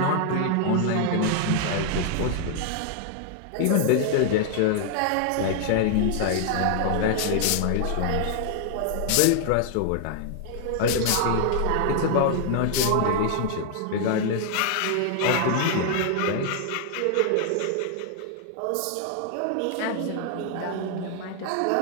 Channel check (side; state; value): both; different; correlation 0.00